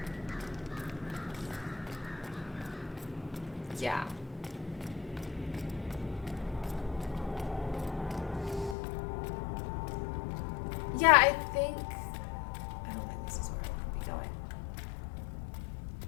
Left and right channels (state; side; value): drops out; right; at 8.8 s